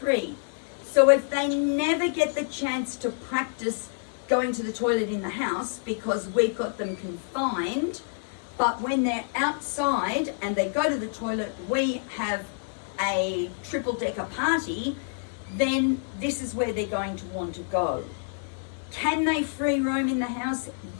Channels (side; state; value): right; silent; 60 dB below the other